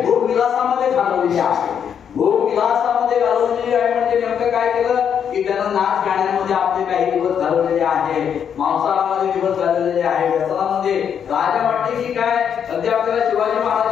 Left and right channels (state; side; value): quieter; right; 8.1 dB